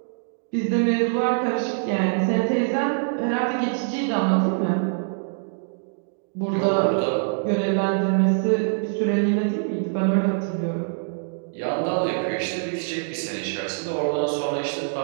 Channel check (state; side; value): silent; left; digital silence